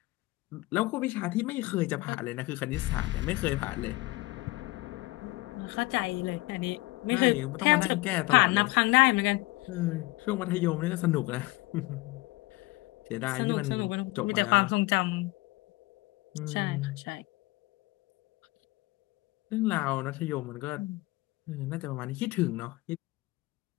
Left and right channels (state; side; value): quieter; right; 21.7 dB